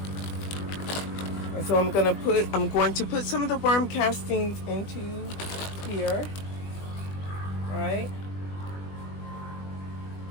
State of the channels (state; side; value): late; right; 20 ms